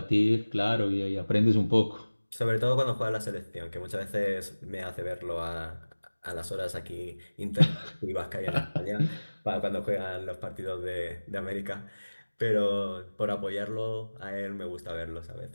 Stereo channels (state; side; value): inverted; both; correlation -1.00